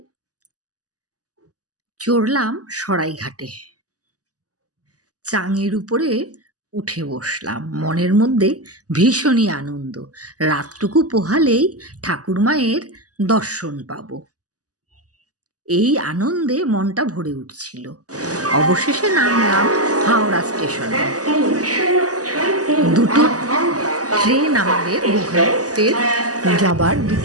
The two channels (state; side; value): late; left; 0.67 ms